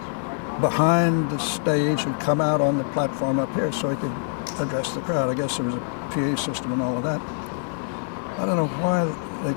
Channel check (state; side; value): silent; right; 62 dB below the other